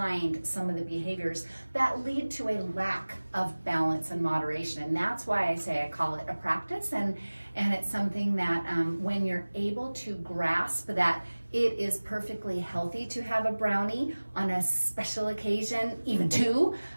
some of the behaviors that lead to a lack of balance and moderation. And that's why I say I call it a practice, and it's something that when you're able to grasp that it is perfectly healthy to have a brownie on a special occasion, even 2,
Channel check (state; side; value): inverted; both; correlation -1.00